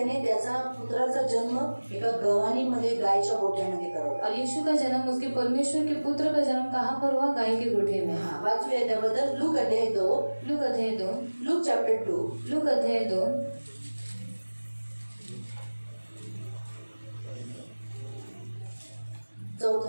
त्याचा पुत्राचा जन्म एका गव्हाणीमध्ये गायच्या गोठ्यामध्ये करवला. और यीशु का जन्म, उसके परमेश्वर के पुत्र का जन्म कहाँ पर हुआ, गाय के गोठे में. हा, वाचूया त्याबद्दल. लूक अध्याय 2. लूक अध्याय 2. Look chapter 2. लूक अध्याय 2.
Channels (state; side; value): inverted; both; correlation -1.00